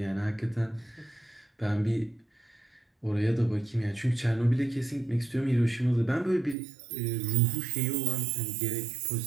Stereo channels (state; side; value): drops out; left; at 6.6 s